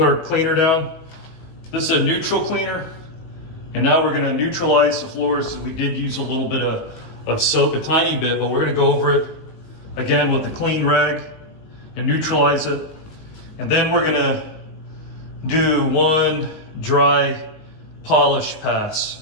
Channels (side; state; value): right; late; 19 ms